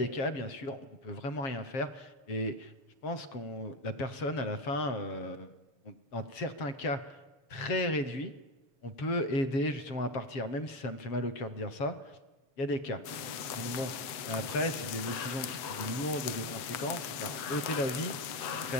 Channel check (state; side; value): late; right; 7.2 ms